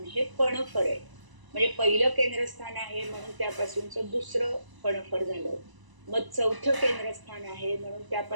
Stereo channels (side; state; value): left; late; 1.0 ms